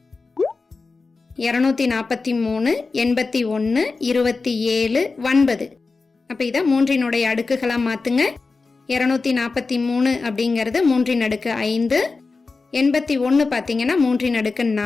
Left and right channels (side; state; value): right; quieter; 4.1 dB